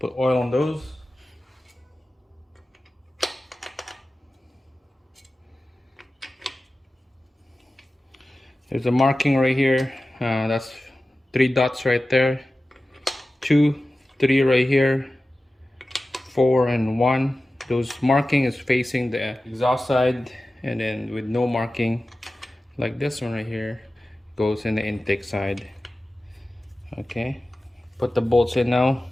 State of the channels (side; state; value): both; normal; correlation 0.95